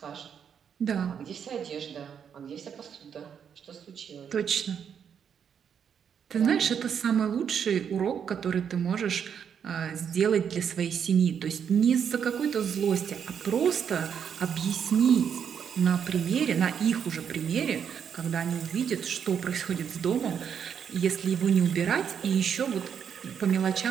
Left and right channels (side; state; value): left; quieter; 7.7 dB